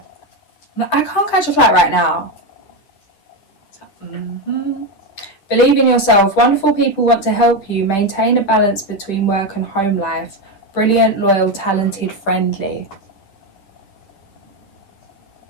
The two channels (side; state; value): right; late; 10 ms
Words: I can't catch a flight right now. Believe in yourself. Wonderful people want to help you. Maintain a balance between work and home life. Brilliant, loyal, talented, friendly.